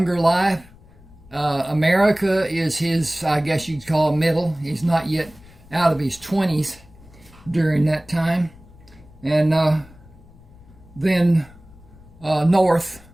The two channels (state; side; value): noise; left; rumble, 24 dB below the sound